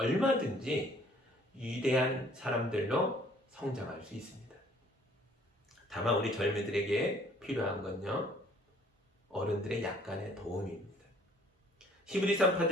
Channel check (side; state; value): both; normal; correlation 0.58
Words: 위대한 사람들로 성장할 수 있습니다. 다만 우리 젊은이들에게 필요한 건요, 어른들의 약간의 도움입니다. 히브리